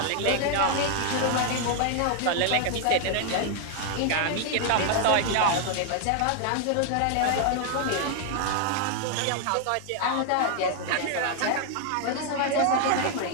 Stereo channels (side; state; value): both; different; correlation 0.00